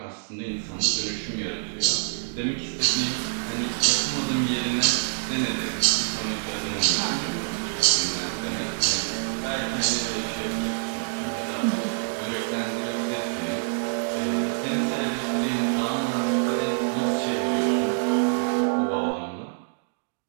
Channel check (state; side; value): silent; left; 61 dB below the other